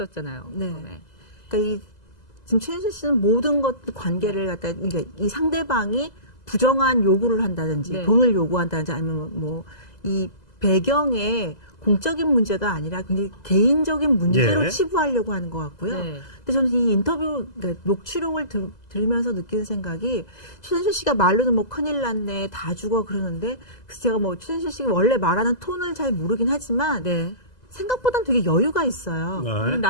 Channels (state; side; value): late; right; 2.0 ms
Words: 네. 처음에. 그러니까 지금 최순실 씨는 모든 것 관계를 갖다 그러니까 이 상대방이 부정한 요구를 한다든지 네. 돈을 요구한다든지 아니면 뭐 이 배경에 공적인 문제가 아니라 굉장히 개인적인 문제로 예. 치부하려고 하는 것 같고요. 네. 근데 저는 이 인터뷰 그러니까 녹취록을 들으면서 느끼는 생각이 최순실 씨가 말로는 뭐 큰일 났네 다 죽어 그러는데 그래서 제가 뭐 최순실 씨가 원래 말하는 톤을 잘 모르긴 하지만 네. 생각보다는 되게 여유가 있어요. 네.